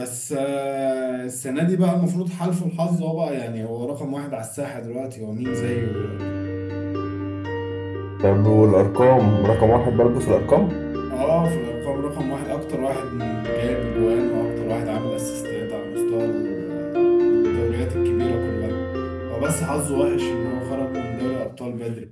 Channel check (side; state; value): both; identical; correlation 1.00